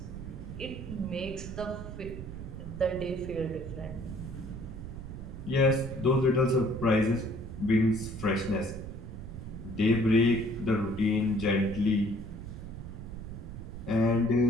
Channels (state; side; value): noise; right; rumble, 10 dB below the sound